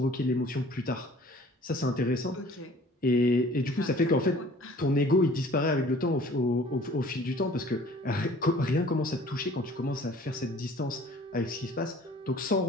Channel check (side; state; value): both; normal; correlation 0.50